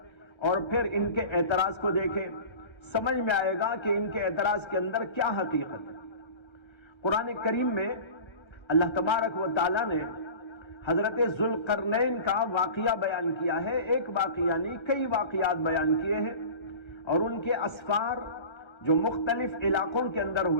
اور پھر ان کے اعتراض کو دیکھیں، سمجھ میں آئے گا کہ ان کے اعتراض کے اندر کیا حقیقت ہے۔ قرآن کریم میں اللہ تبارک و تعالیٰ نے حضرت ذوالقرنین کا واقعہ بیان کیا ہے۔ ایک واقعہ نہیں، کئی واقعات بیان کیے ہیں، اور ان کے اسفار جو مختلف علاقوں کے اندر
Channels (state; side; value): late; right; 1.3 ms